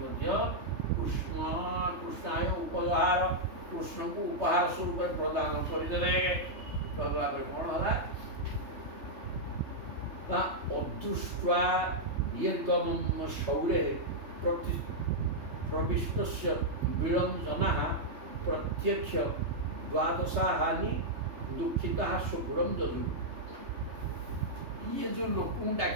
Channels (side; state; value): left; late; 3.2 ms